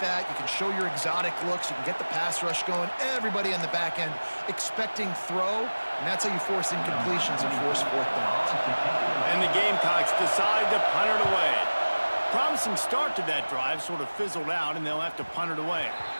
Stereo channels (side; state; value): both; inverted; correlation -1.00